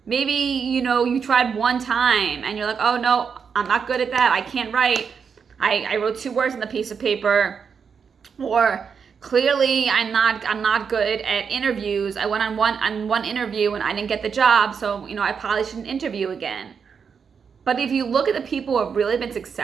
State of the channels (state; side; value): quieter; left; 6.3 dB